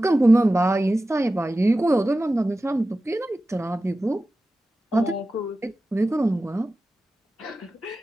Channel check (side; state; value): both; normal; correlation 0.95